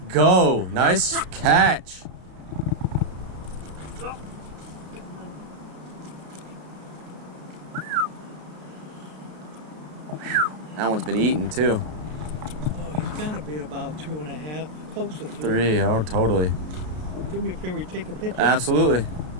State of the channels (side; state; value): left; late; 33 ms